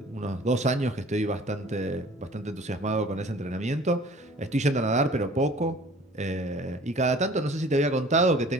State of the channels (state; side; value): normal; both; correlation 0.48